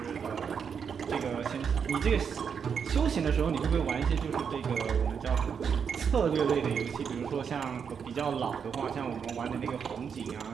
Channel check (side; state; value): left; quieter; 6.8 dB